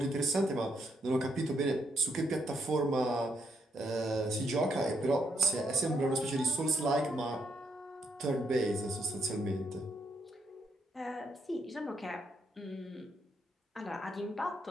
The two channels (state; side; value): normal; both; correlation 0.77